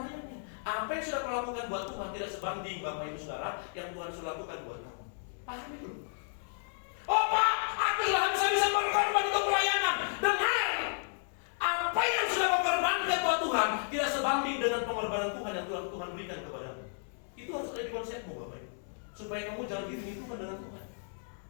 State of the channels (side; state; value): right; silent; digital silence